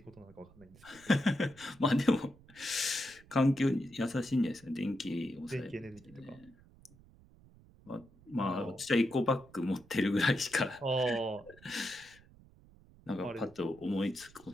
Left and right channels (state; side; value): noise; right; rumble, 25 dB below the sound